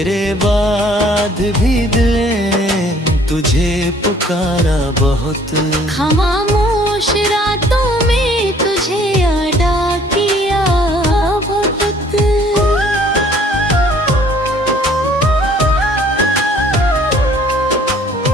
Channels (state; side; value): normal; both; correlation 0.57